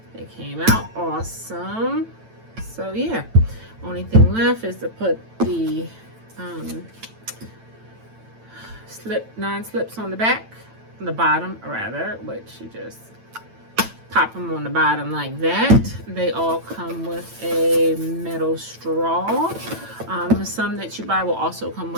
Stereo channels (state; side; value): late; left; 9.0 ms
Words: They came out awesome. So yeah, only thing left is to put the non-slips on the back, on the bottom rather, which you just pop them on the bottom like that. They all come with a metal straw. Some that you buy will also come